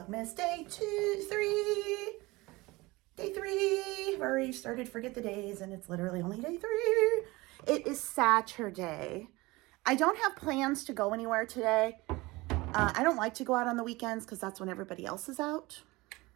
Day 3. Day 3. I've already started to forget the days and it's literally only day 3. It is Saturday. I don't have plans to go anywhere today. I don't like to go out on the weekends because that's when everybody else is out,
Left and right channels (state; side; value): quieter; left; 22.0 dB